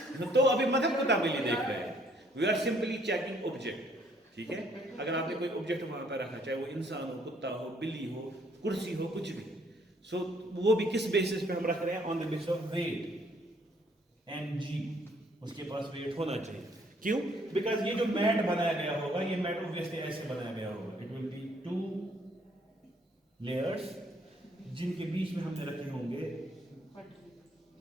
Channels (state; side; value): normal; both; correlation 0.65